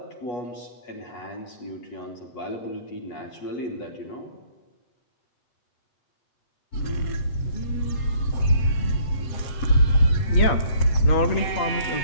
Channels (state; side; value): late; right; 8.5 ms